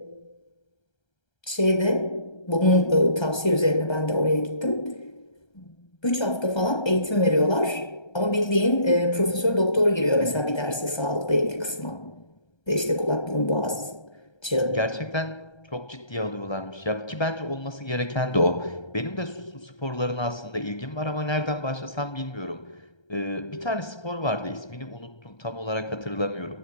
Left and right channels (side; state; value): right; late; 1.3 ms